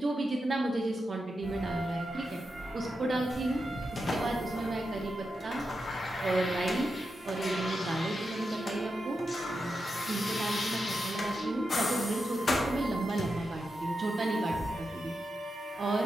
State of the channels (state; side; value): normal; both; correlation 0.88